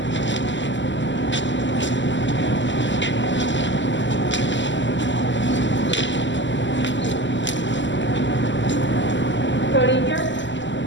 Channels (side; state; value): right; late; 0.54 ms